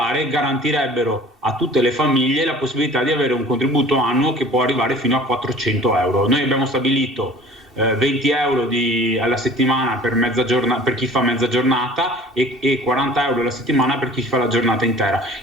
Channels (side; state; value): both; normal; correlation 0.46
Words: garantirebbero a tutte le famiglie la possibilità di avere un contributo annuo che può arrivare fino a 400 euro. Noi abbiamo stabilito 20 euro alla settimana per chi fa mezza giornata e 40 euro alla settimana per chi fa la giornata intera.